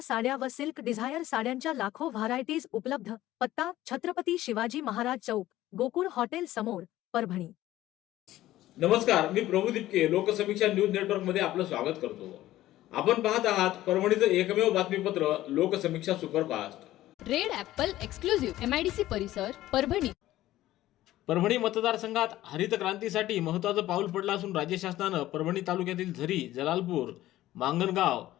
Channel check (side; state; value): right; quieter; 15.0 dB